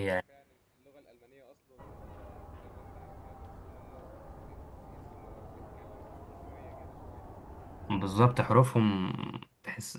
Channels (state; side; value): identical; both; correlation 1.00